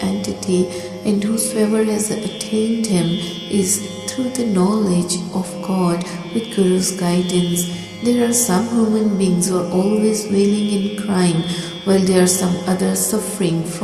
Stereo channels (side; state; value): both; identical; correlation 1.00